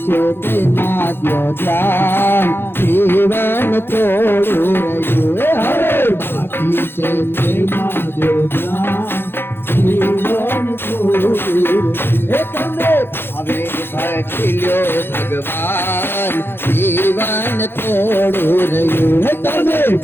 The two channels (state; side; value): late; right; 0.11 ms